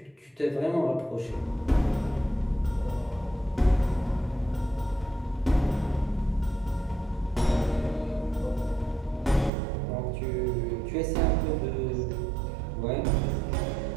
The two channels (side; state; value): left; drops out; at 9.5 s